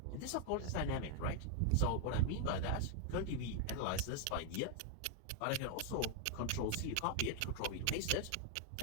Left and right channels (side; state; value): both; different; correlation 0.00